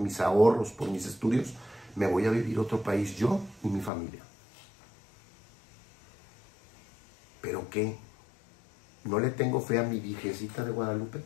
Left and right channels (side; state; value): right; drops out; at 3.9 s